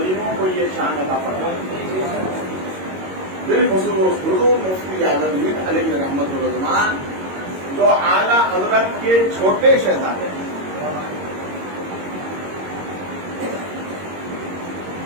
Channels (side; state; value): left; late; 22 ms